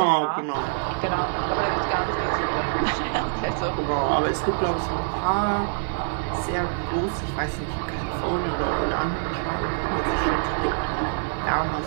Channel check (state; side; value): silent; left; digital silence